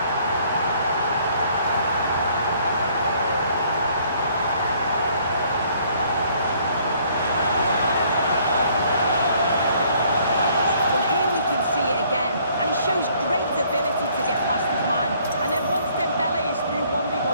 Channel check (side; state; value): both; inverted; correlation -0.62